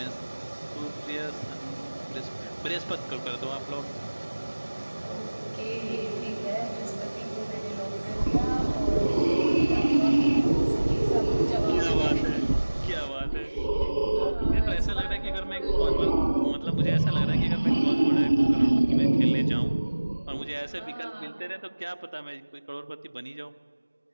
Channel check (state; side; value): inverted; both; correlation -1.00